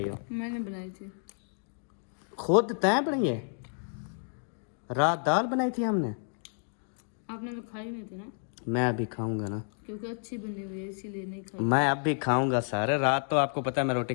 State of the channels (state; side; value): silent; right; 55 dB below the other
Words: हो? मैंने बनाई थी। खुद तय बनाई है? रात दाल बनाई थी हमने, आपने तो खाई नहीं थी ना? मैं अभी खाऊंगा ना, क्योंकि अच्छी बनी हुई है इसीलिए नहीं खाई। मैं अब भी खाऊंगा सारे। रात तो आपको पता है मैं रोटी